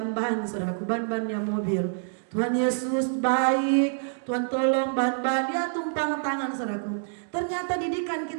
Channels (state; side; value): silent; left; digital silence